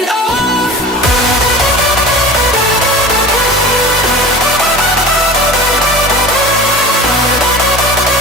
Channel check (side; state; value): both; normal; correlation 0.36